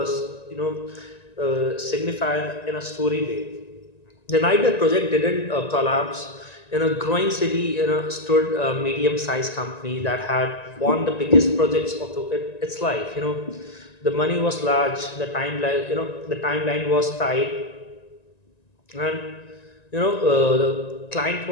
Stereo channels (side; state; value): right; late; 1.9 ms